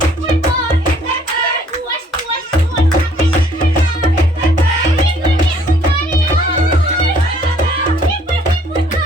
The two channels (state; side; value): normal; both; correlation 0.61